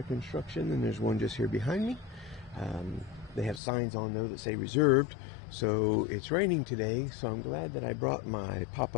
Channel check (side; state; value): right; drops out; at 3.6 s